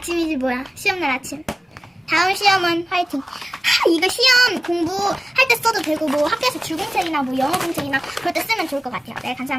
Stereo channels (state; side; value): normal; both; correlation 0.96